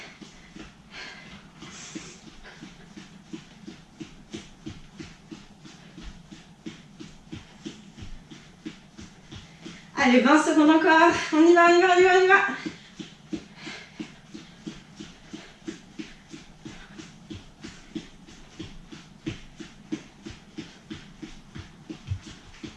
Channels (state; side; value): identical; both; correlation 1.00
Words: Allez, 20 secondes encore. On y va, on y va, on y va, on y va.